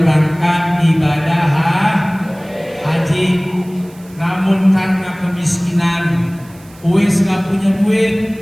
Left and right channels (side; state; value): right; noise; hiss, 26 dB below the sound